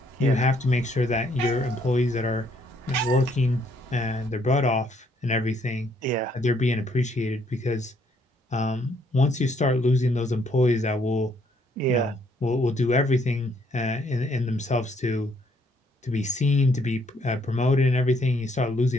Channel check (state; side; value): normal; both; correlation 0.68